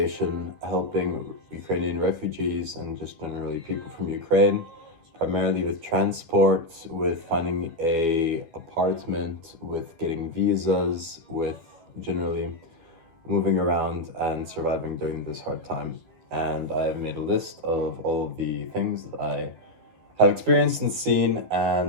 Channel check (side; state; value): left; late; 12 ms